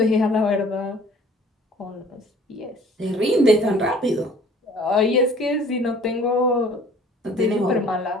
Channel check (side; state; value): both; normal; correlation 0.52